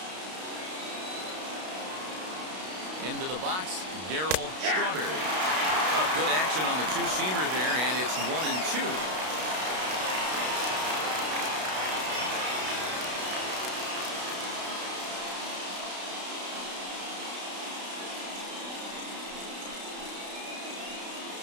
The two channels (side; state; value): left; late; 32 ms